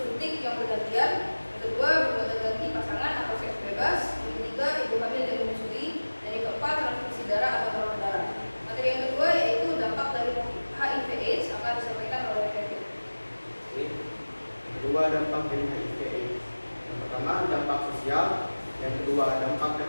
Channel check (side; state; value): both; inverted; correlation -1.00